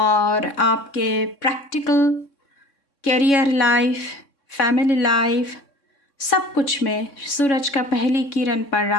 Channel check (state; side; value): late; right; 3.6 ms